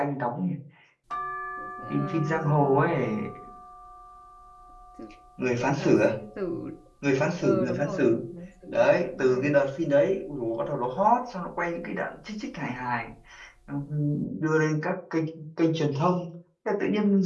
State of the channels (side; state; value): both; identical; correlation 1.00